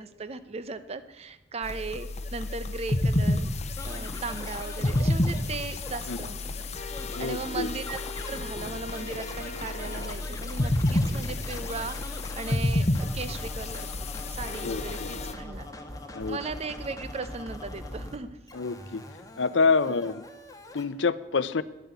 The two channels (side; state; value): both; normal; correlation 0.38